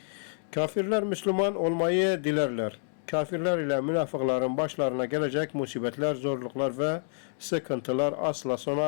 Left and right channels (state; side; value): silent; right; digital silence